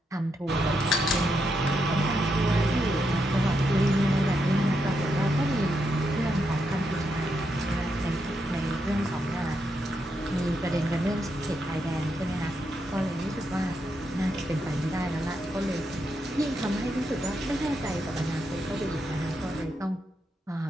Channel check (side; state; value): both; normal; correlation 0.82